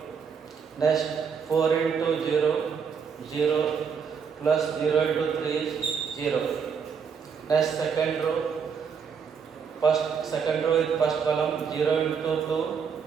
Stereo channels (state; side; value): quieter; left; 6.5 dB